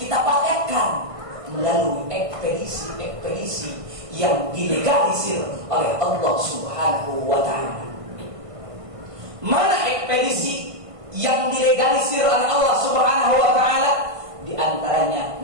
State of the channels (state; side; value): late; left; 1.5 ms